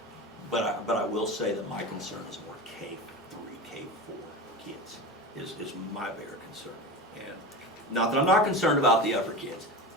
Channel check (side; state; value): both; normal; correlation 0.27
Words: But I will say that my concern is more K3, K4 kids is my bigger concern. And not that I'm not concerned about the upper kids.